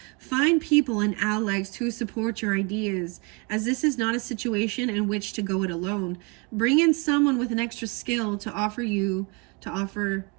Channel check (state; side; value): quieter; left; 31.1 dB